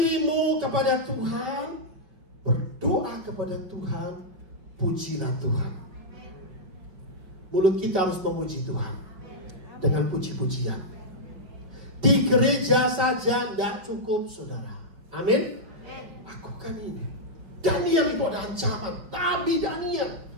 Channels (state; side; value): late; left; 5.1 ms